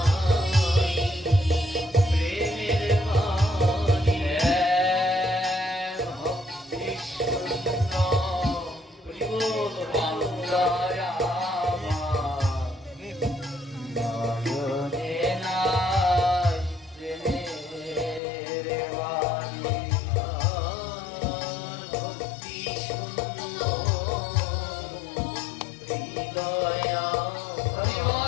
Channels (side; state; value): right; drops out; at 18.2 s